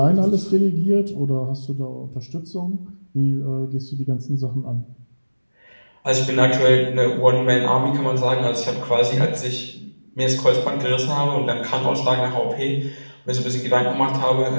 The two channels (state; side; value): inverted; both; correlation -1.00